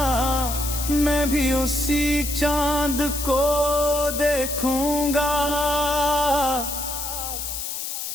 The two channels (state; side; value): noise; left; hiss, 5 dB below the sound